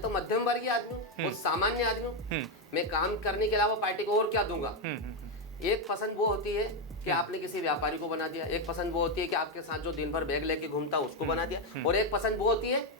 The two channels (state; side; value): normal; both; correlation 0.05